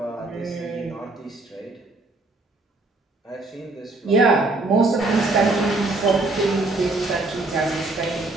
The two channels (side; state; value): left; quieter; 3.1 dB